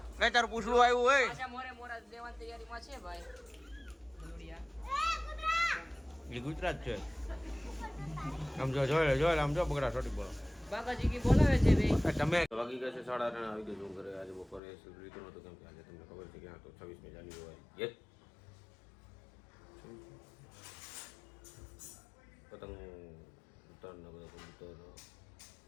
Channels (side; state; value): right; drops out; at 14.6 s